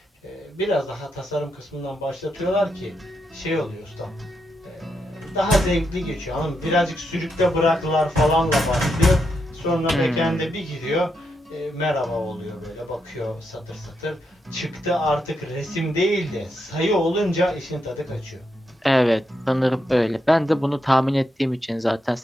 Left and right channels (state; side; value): normal; both; correlation 0.82